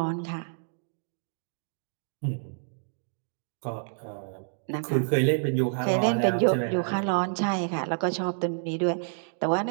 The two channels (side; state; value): left; silent; digital silence